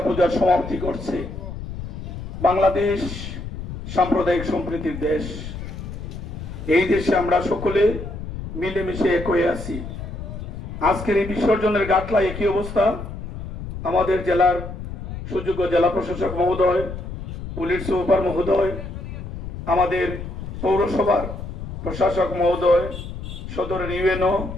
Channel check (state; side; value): noise; left; rumble, 8 dB below the sound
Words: সমাপ্তি করছে। বাংলাদেশ সাম্প্রদায়িক সম্প্রীতির দেশ। এই দেশে আমরা সকলে মিলেমিশে এক হয়ে আছি। আজকের এই বিসর্জনের গাটলা একই অবস্থা। আমাদের জেলার সুযোগ্য জেলা প্রশাসক মহোদয়, পুলিশ সুপার মহোদয়, আমাদের পৌরসভার প্রশাসক মহোদয়, সদরের ইউএনও,